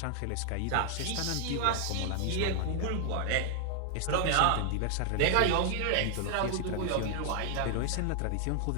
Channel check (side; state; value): both; different; correlation 0.00